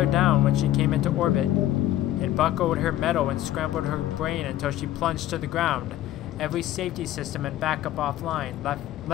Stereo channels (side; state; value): right; quieter; 13.6 dB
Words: down when she came into orbit. It buckled her metal and scrambled her brain until she plunged to the ground. Every safety system and backup offline, left